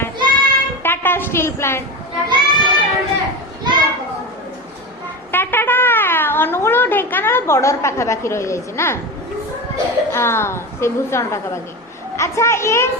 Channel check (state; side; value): normal; both; correlation 0.23